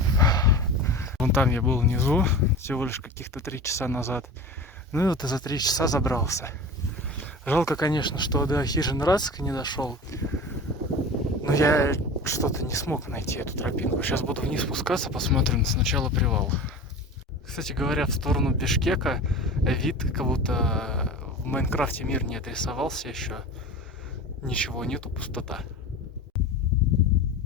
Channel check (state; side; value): normal; both; correlation 0.34